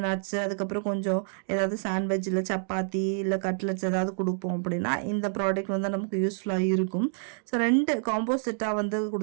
நட்ஸு, அதுக்கப்புறம் கொஞ்சம் ஏதாவது சாண்ட்விச் இல்லை சப்பாத்தி இல்லை கட்லெட்ஸ் ஏதாவது கொடுப்போம் அப்படின்னா இந்த ப்ராடக்ட் வந்து நமக்கு யூஸ்ஃபுல்லாக இருக்கும். ஸோ 2 காம்போ செட்டாக வந்து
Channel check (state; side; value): silent; left; 57 dB below the other